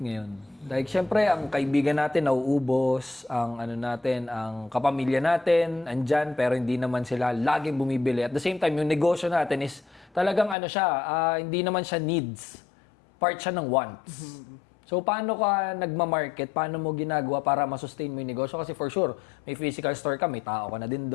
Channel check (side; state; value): right; drops out; at 10.6 s